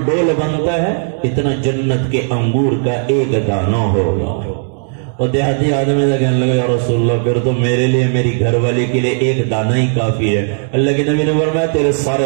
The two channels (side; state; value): left; silent; digital silence